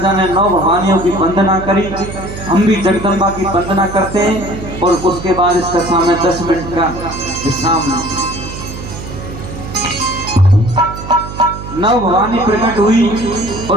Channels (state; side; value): noise; right; hum, 10 dB below the sound